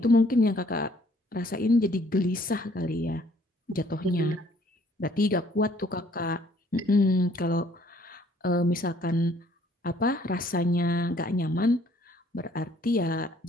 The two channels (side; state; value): both; normal; correlation 0.61